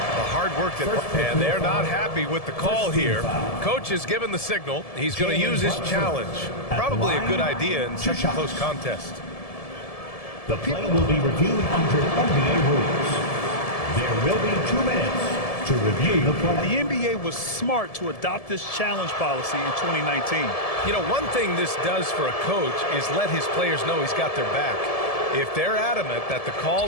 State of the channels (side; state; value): right; late; 1.7 ms